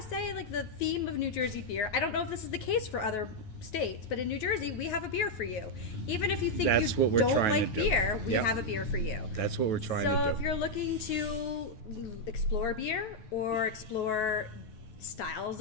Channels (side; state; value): right; late; 9.3 ms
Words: say like the theme of New Jersey beer. I don't know if this is the case for other states, but in New Jersey we have a beer for you. Even if you think That's you what we're don't trying to like do. beer, we Yep. have a beer for you. That's what we're trying So to if do. you're looking to explore beer or explore styles